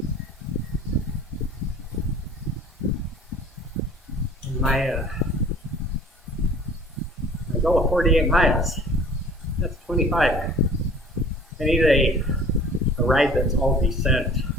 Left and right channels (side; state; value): both; normal; correlation 0.48